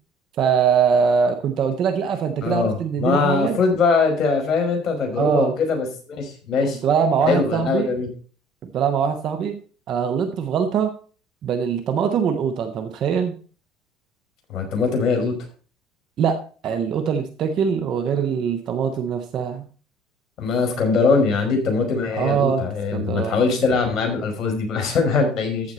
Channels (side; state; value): both; normal; correlation 0.52